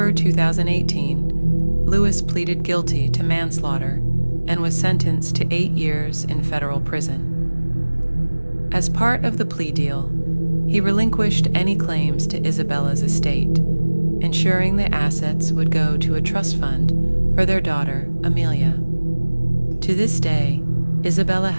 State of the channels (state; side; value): inverted; both; correlation -1.00